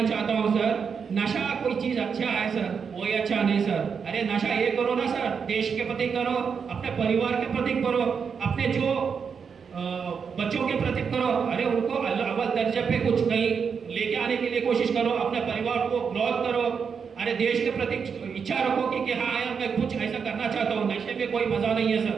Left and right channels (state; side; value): quieter; left; 6.3 dB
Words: चाहता हूँ सर, नशा कोई चीज अच्छा है सर, कोई अच्छा नहीं सर। अरे नशा ये करो ना सर, देश के प्रति करो, अपने परिवार के प्रति करो, अपने जो बच्चों के प्रति करो। अरे उनको अव्वल दर्जे पे कुछ कहीं लेके आने के लिए कोशिश करो, अपने परिवार को ग्रोथ करो। अरे देश के प्रति इच्छा रखो कि हाँ यार मैं कुछ ऐसा करना चाहता हूँ। नशे में कोई मजा नहीं है